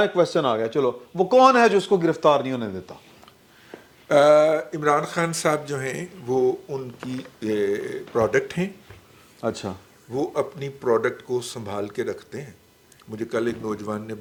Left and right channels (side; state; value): both; identical; correlation 1.00